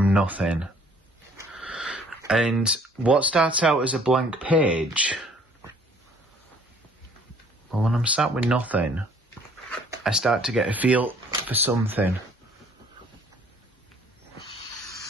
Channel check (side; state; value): both; normal; correlation 0.58